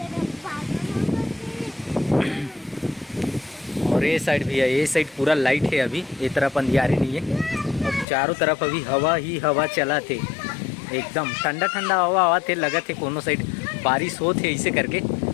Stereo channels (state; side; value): drops out; right; at 8.1 s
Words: और ये साइड भी है, ये साइड पूरा लाइट है अभी, ये तरफ अंधियारी नहीं है। और चारों तरफ अभी हवा ही हवा चला थे एकदम ठंडा ठंडा हवा हवा थे। लगा थे कोनो साइड बारिश हो थे ऐसे करके। ये